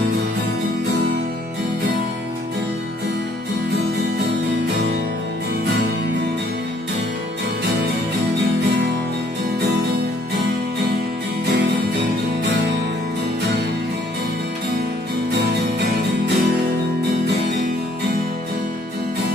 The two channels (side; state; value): both; normal; correlation 0.63